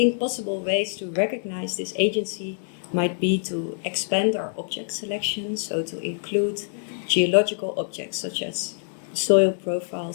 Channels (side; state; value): right; silent; digital silence